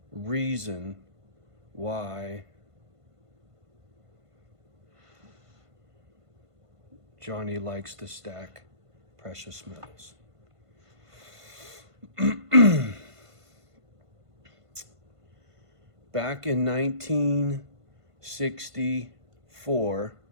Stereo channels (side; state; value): left; late; 1.5 ms